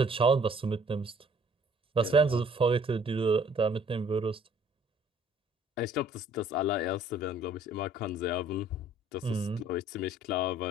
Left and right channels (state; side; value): normal; both; correlation 0.57